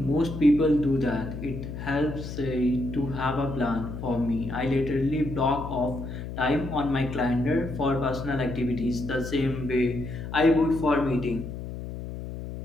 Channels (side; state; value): left; noise; hum, 8 dB below the sound